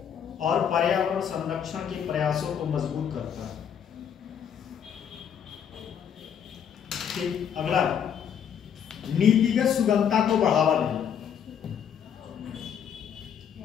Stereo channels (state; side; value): quieter; right; 8.2 dB